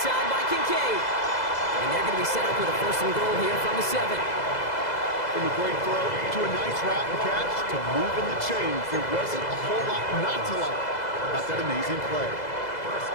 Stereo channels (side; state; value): right; late; 2.0 ms